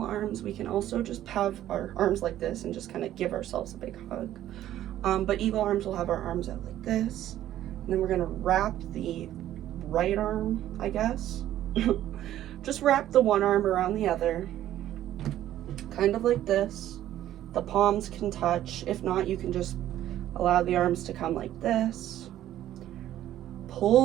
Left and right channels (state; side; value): quieter; left; 12.7 dB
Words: arms. We can also just have our arms like this and just kind of give ourselves a big hug. But eagle arms will have our arms out like this. And then we're going to wrap the right arm, I guess. Just wrap the one arm around the other. Kind of like this. The palms can touch. If not, you can just allow the arms to come like this.